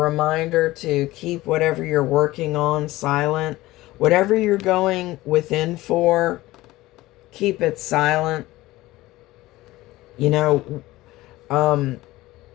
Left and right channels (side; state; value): right; quieter; 18.0 dB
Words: to keep whatever you're working on silent. Whatever you're going within for, keep it silent. You know,